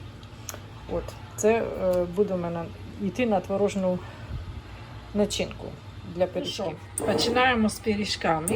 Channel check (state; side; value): identical; both; correlation 1.00